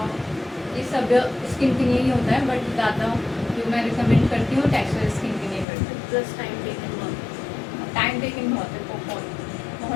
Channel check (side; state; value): right; drops out; at 5.7 s